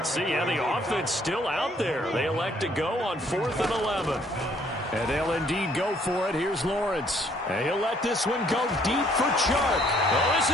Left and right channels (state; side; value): normal; both; correlation 0.64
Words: see. Yeah, the offense still out there. They elect to go on 4th and 11. And they'll indeed go for it. Here's Lawrence. And he'll let this one go deep for Chark. Oh, this